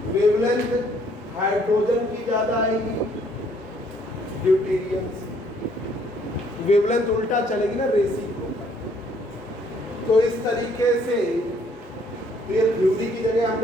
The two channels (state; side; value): normal; both; correlation 0.64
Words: वेवलेंथ हाइड्रोजन की ज्यादा आएगी ड्यूटेरियम से. वेवलेंथ उल्टा चलेगी ना, रेसिप्रोकल. तो इस तरीके से ये थ्योरी की जगह